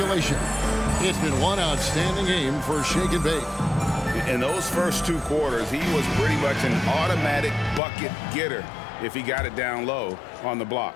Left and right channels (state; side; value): drops out; right; at 7.8 s